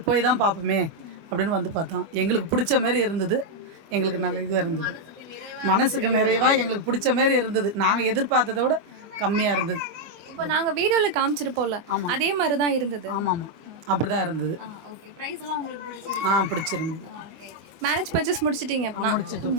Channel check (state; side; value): late; left; 24 ms